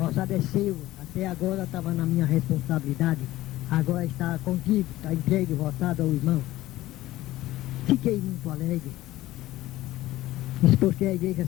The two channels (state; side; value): quieter; right; 16.2 dB